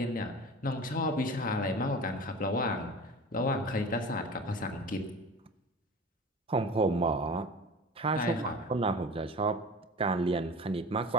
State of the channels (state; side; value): normal; both; correlation 0.36